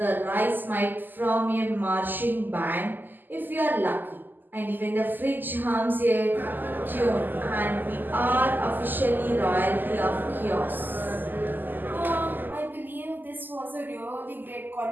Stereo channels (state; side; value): late; left; 0.089 ms